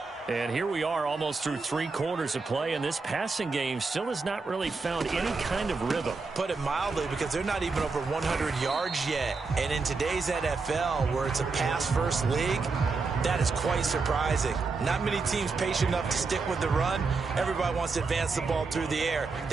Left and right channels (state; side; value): quieter; left; 4.3 dB